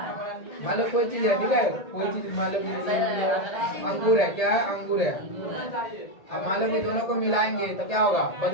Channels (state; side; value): late; right; 1.8 ms